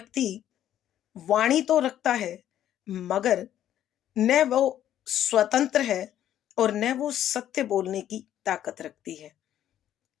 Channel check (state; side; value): quieter; right; 11.4 dB